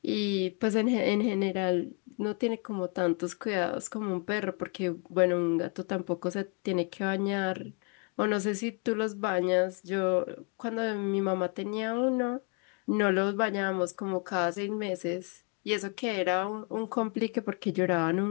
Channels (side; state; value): right; quieter; 35.9 dB